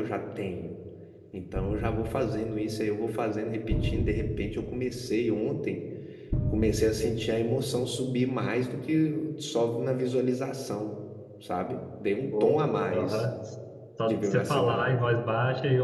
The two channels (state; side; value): identical; both; correlation 1.00